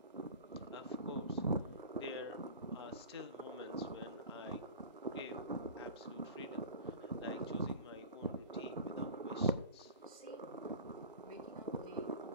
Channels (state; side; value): inverted; both; correlation -0.35